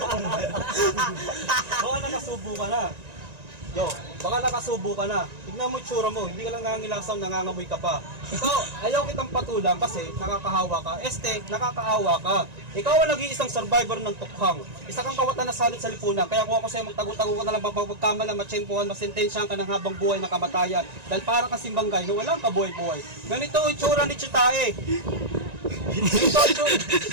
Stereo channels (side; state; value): left; late; 1.9 ms